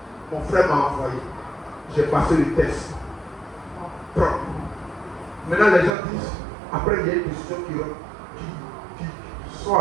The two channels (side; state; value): left; drops out; at 6.0 s